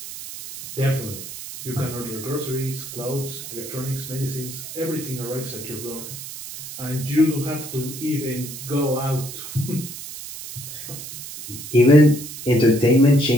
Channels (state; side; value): noise; right; hiss, 11 dB below the sound